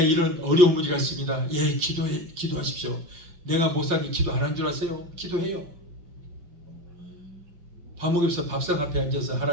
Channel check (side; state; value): left; late; 6.0 ms